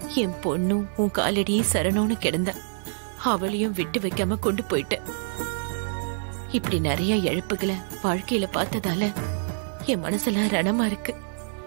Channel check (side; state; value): left; silent; 60 dB below the other